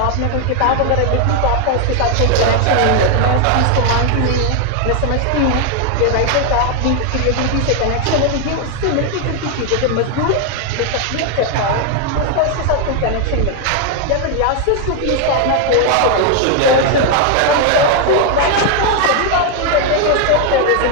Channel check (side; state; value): both; different; correlation 0.01